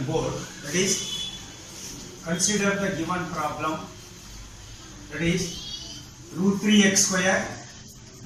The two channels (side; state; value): both; identical; correlation 1.00